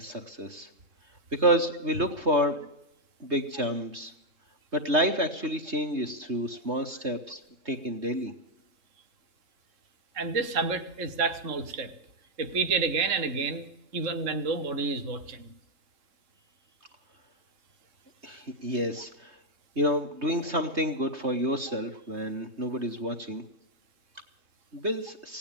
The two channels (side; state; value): left; late; 3.2 ms